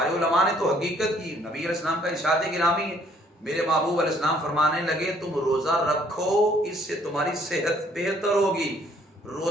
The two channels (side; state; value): both; normal; correlation 0.63